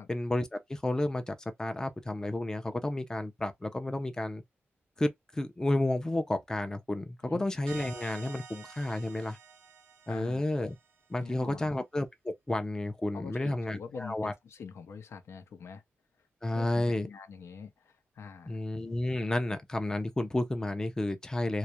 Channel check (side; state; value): both; normal; correlation 0.97